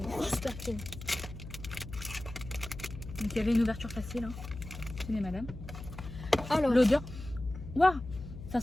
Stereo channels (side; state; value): left; noise; hum, 11 dB below the sound